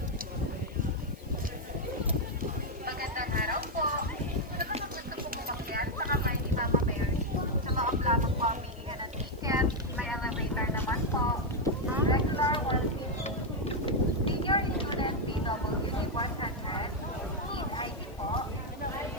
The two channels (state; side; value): noise; left; hiss, 27 dB below the sound